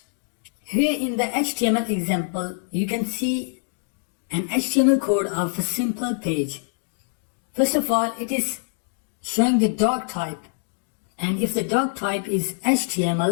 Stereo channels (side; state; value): right; silent; digital silence